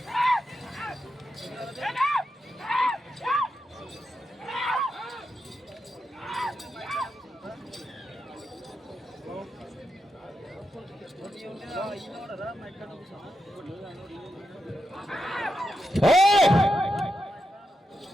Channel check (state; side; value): normal; both; correlation 0.87